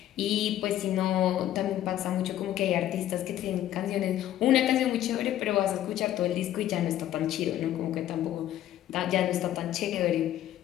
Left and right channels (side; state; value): right; quieter; 12.5 dB